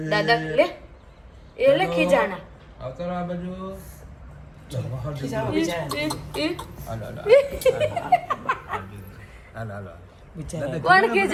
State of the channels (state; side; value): identical; both; correlation 1.00